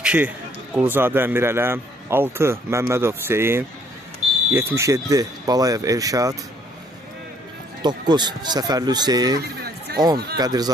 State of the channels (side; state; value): both; normal; correlation 0.64